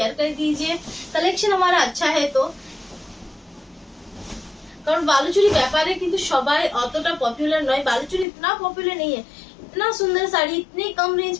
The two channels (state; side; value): drops out; right; at 8.2 s